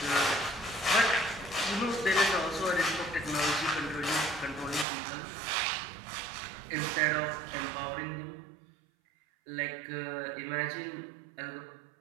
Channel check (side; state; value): left; drops out; at 4.9 s